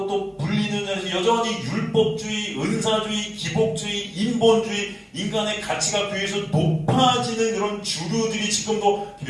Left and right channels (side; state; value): both; identical; correlation 1.00